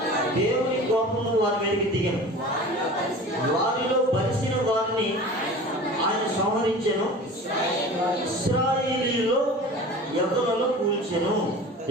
దేవుని కోపము వారి మీదకి దిగను. వారిలో బలిసిన వారిని ఆయన సంహరించెను, ఇశ్రాయేలీయుల్లో యవ్వనులను కూల్చెను.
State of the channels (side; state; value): both; normal; correlation 0.38